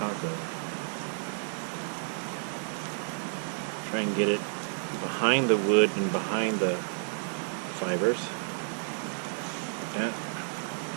Try and get it behind the wood and behind the fibers. Like that.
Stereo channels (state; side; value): silent; left; 57 dB below the other